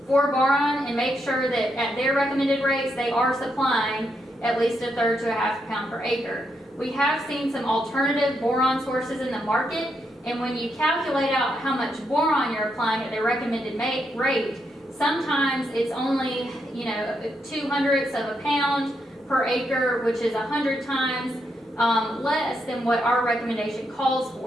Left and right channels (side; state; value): both; normal; correlation 0.80